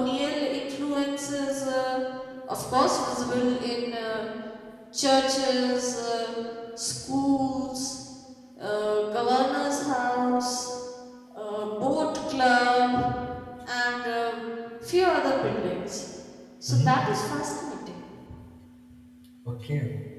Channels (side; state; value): both; identical; correlation 1.00